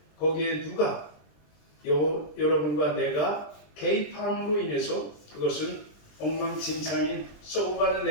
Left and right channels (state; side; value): late; right; 20 ms